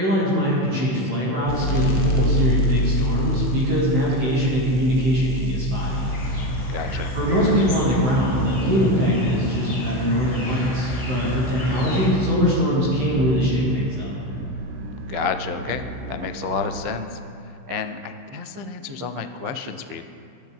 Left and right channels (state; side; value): late; left; 16 ms